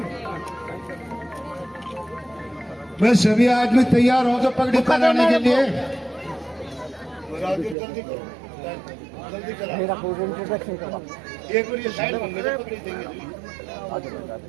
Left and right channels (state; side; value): drops out; left; at 7.8 s